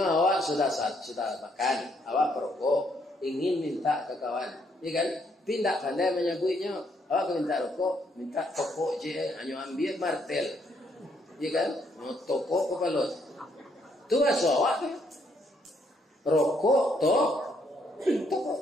awak sudah makan, awak perokok, ingin minta ke kawan, ya kan? Pindah pandai menyaguinya, awak minta rokok, minta toko je, hanya ambil martel, ya kan? Mau toko kepala, tu asal awak kan? Rokok toko,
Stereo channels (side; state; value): both; normal; correlation 0.71